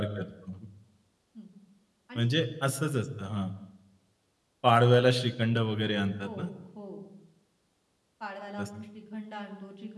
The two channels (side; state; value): both; identical; correlation 1.00